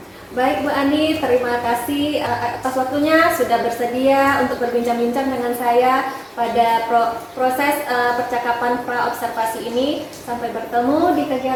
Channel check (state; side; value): identical; both; correlation 1.00